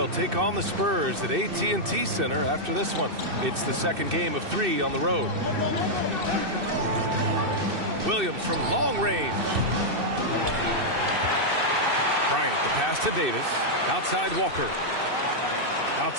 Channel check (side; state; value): left; late; 2.6 ms